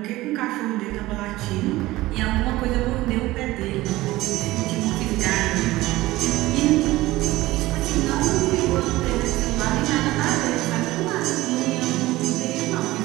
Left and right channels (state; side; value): quieter; left; 18.1 dB